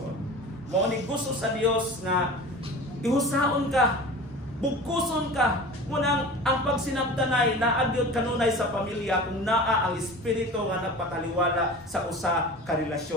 Mao ni gusto sa Dios nga ihusaon ka, bugkuson ka. Munang ang pagsinabtanay na agyod kanunay sa pamilya kung naa ang espiritu nga nagpataliwala sa usa ka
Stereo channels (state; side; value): normal; both; correlation 0.36